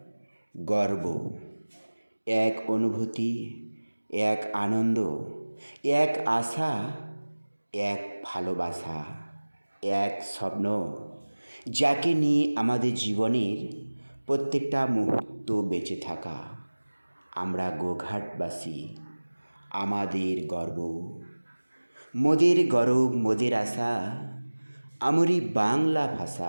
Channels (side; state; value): both; inverted; correlation -1.00